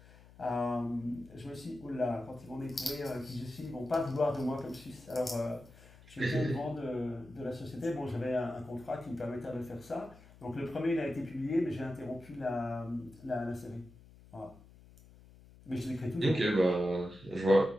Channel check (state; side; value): noise; left; hum, 22 dB below the sound